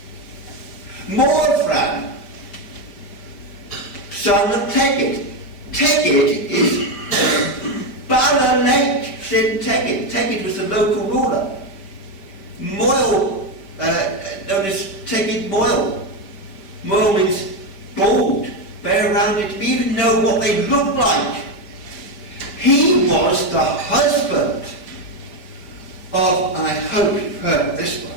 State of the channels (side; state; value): right; late; 5.1 ms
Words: Morvran, son of Tegid. Tegid is Bala Lake in Tegid. Tegid was the local ruler. Moyle, known as Tegid Moyle. Moyle means bald, bare-rounded. We even know what they look like. He was the husband of, and I hope you've heard of this